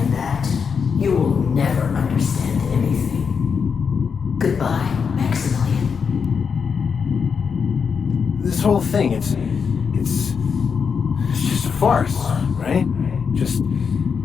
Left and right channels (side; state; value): right; quieter; 6.1 dB